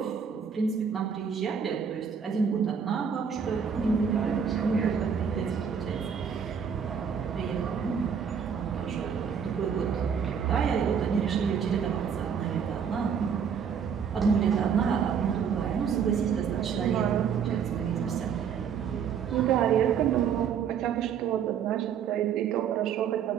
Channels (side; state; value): left; quieter; 7.2 dB